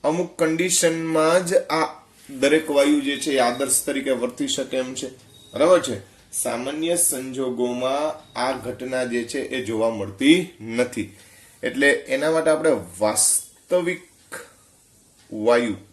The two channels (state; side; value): identical; both; correlation 1.00